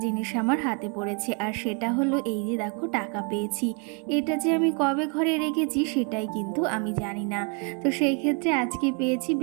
জিনিস আমার হাতে পড়েছে, আর সেটা হলো এই যে দেখো টাকা পেয়েছি। এটা যে আমি কবে ঘরে রেখেছি সেটাই কিন্তু আমি জানি না। তো সেই ক্ষেত্রে আজকে পেয়েছি,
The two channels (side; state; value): left; quieter; 36.3 dB